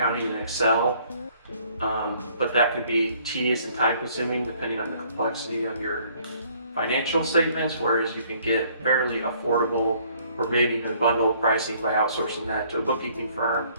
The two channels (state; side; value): inverted; both; correlation -0.61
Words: in Excel. But that could be tedious and time consuming depending on the complexity of your financial statements, whereas you can get fairly affordable or maybe even bundled pricing by outsourcing that to a bookkeeping firm.